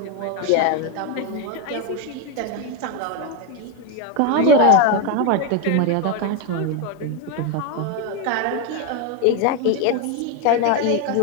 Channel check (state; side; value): different; both; correlation 0.02